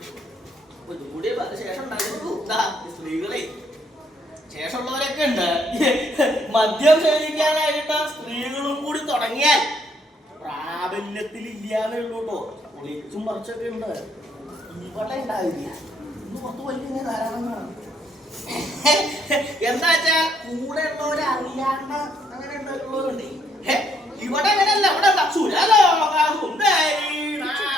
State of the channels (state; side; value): normal; both; correlation 0.69